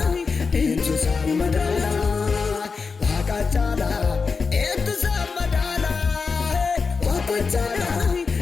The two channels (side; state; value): right; quieter; 4.9 dB